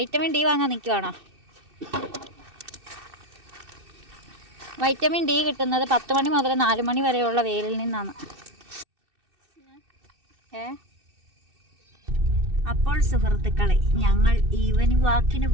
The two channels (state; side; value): late; left; 2.6 ms